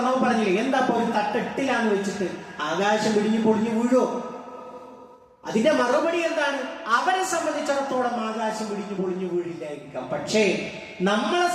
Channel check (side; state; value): both; identical; correlation 1.00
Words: പറഞ്ഞില്ലേ, എന്താ ഒരു തട്ടെട്ടിലാന്ന് വെച്ചിട്ട് ആകാശം പിടിഞ്ഞു പൊളിഞ്ഞു വീഴോ? അതിന്റെ മറുപടി എന്താണ്? അവരെ സംബന്ധിച്ചിടത്തോളം ആകാശം പിടിഞ്ഞു പൊളിഞ്ഞു വീഴില്ലായിരിക്കാം. പക്ഷേ നമ്മളെ